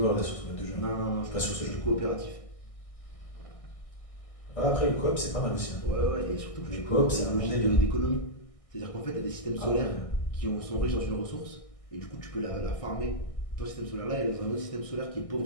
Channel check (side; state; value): right; late; 1.6 ms